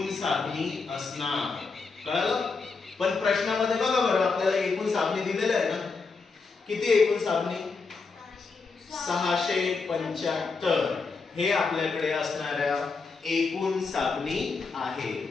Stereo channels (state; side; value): quieter; right; 4.4 dB